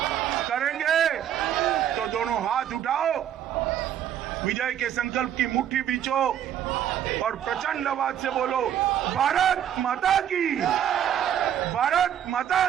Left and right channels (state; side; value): quieter; left; 10.1 dB